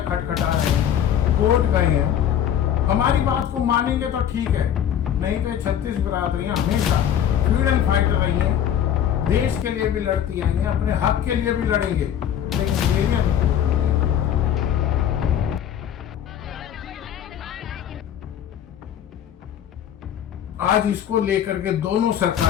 खटखटा रहे हैं, कोर्ट गए हैं। हमारी बात को मानेंगे तो ठीक है, नहीं तो 36 बिरादरियां हमेशा फ्रीडम फाइटर रही हैं, देश के लिए भी लड़ती आई हैं, अपने हक के लिए भी लड़ेंगे, लेकिन डेरियां नहीं। आज इसको लेकर के दोनों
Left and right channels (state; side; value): quieter; right; 9.8 dB